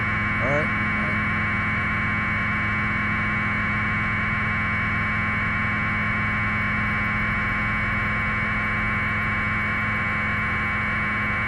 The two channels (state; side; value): identical; both; correlation 1.00